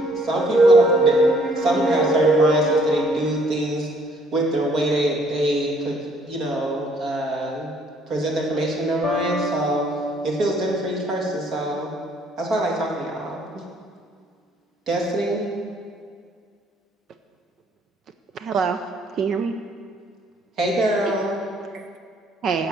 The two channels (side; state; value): both; normal; correlation 0.63